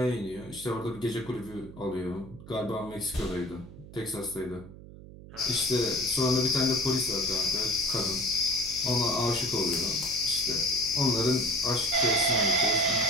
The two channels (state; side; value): noise; right; hum, 17 dB below the sound